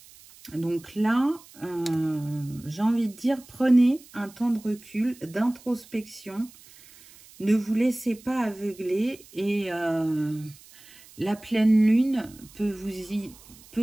Donc là, j'ai envie de dire, prenez un temps de recul, d'introspection. Ne vous laissez pas aveugler et la pleine lune peut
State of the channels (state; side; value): noise; right; hiss, 23 dB below the sound